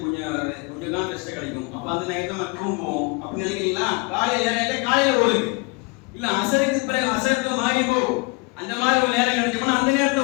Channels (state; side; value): quieter; right; 28.4 dB